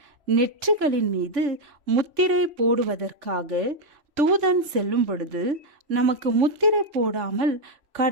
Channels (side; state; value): left; late; 3.5 ms